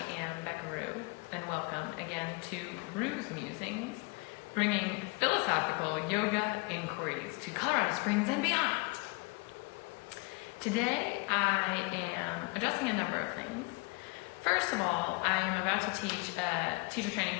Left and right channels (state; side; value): quieter; right; 27.5 dB